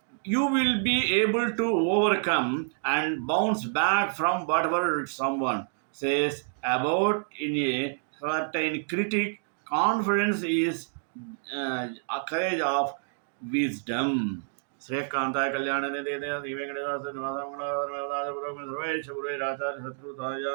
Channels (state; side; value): silent; left; digital silence